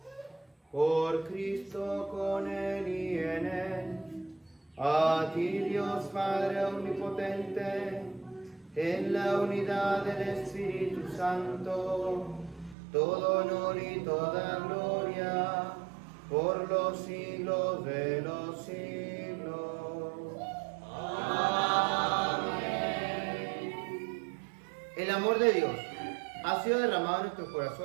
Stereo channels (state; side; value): drops out; left; at 12.8 s